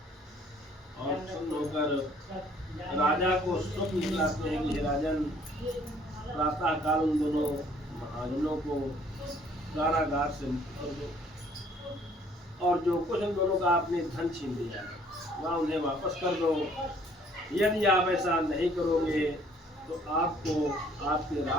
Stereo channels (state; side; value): normal; both; correlation 0.59